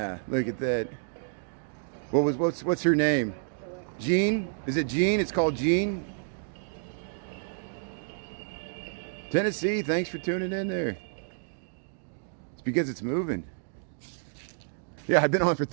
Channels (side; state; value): left; silent; digital silence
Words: look at that. What's her name? Jean? Is it Jean? It's called Jean? Tennessee, thanks for tuning in there. It's because it's moving. Yeah, I've been on for